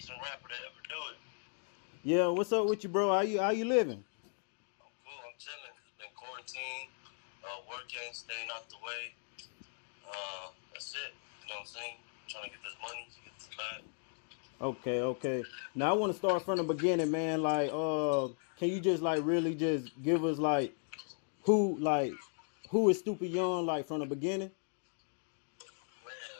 rapper to ever do it. Yeah, what's up with you, bro? How you living? I'm cool, I'm chilling. Been quarantined, working, staying out the way. That's it. You know what I'm saying? Trying to get this money, to get this bag. Okay. Now I want to start from the beginning, man. Can you just like really just give us who is Stupid Young like from the beginning?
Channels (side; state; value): right; silent; 53 dB below the other